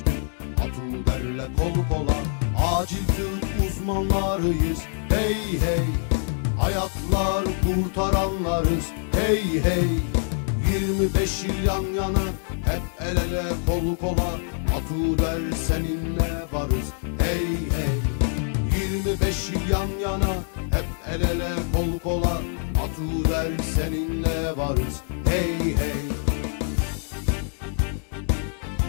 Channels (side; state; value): right; silent; 55 dB below the other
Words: Atuder'le kol kola. Acil tıp uzmanlarıyız, hey hey. Hayatlar kurtaranlarız, hey hey. 25 yıl yan yana, hep el ele kol kola. Atuder seninle varız, hey hey. 25 yıl yan yana, hep el ele kol kola. Atuder seninle varız, hey hey.